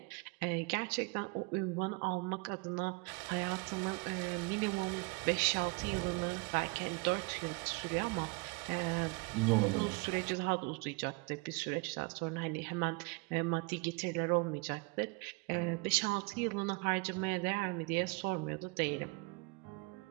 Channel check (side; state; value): left; quieter; 28.1 dB